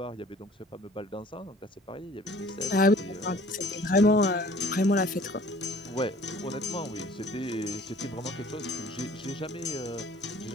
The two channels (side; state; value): both; normal; correlation 0.50